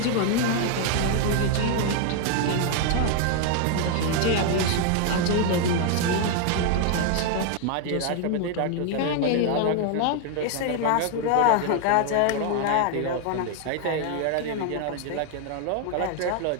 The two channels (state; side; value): different; both; correlation 0.00